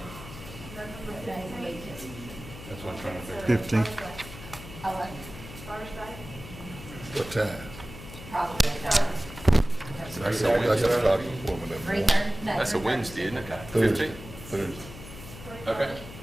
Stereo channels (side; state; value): left; noise; hum, 14 dB below the sound